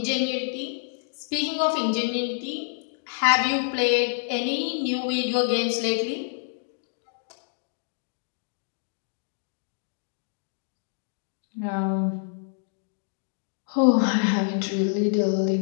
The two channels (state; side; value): silent; right; 60 dB below the other